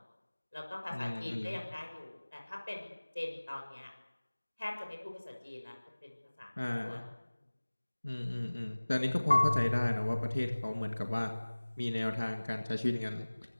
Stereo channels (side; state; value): both; inverted; correlation -1.00